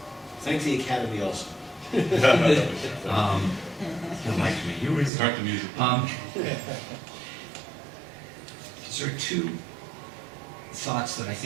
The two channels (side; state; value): left; drops out; at 5.1 s